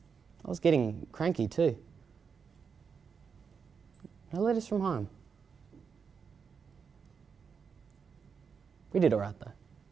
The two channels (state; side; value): quieter; left; 6.1 dB